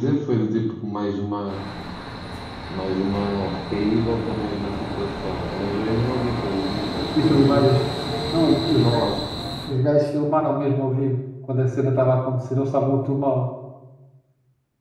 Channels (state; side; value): identical; both; correlation 1.00